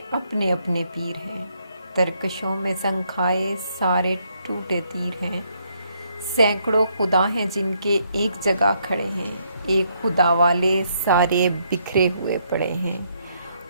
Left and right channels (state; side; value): inverted; both; correlation -0.73